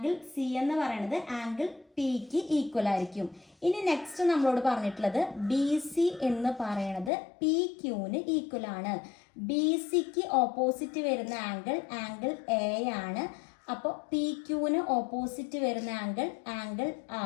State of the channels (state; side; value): drops out; right; at 7.1 s